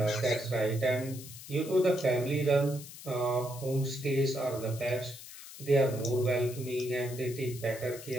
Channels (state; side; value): noise; left; hiss, 14 dB below the sound